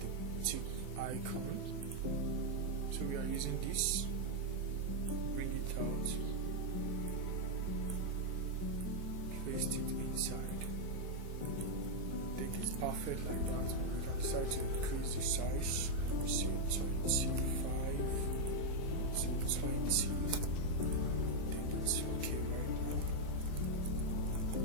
the tick icon. So we are using this. Bring it out. Paste it inside. I think it's perfect like that. We can decide to increase the size. Let me see, 25 to 20. I think it's okay right now.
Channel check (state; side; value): late; left; 4.6 ms